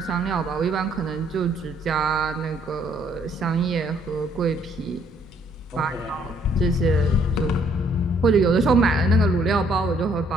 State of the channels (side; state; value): both; normal; correlation 0.66